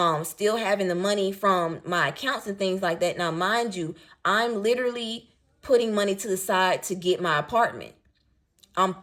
still having the money from my accounts and things like that. Now, mind you, I'm literally putting money to the side to get my apartment. I'm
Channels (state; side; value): identical; both; correlation 1.00